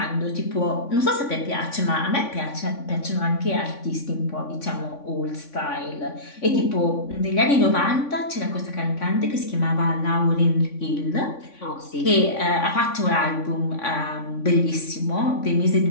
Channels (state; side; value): late; right; 3.5 ms